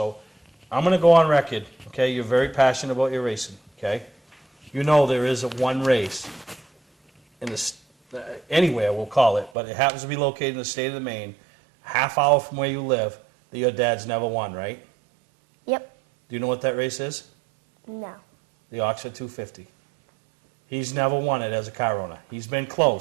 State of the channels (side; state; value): left; drops out; at 9.5 s